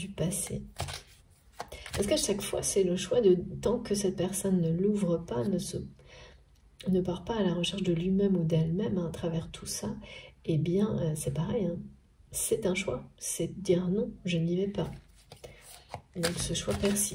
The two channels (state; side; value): identical; both; correlation 1.00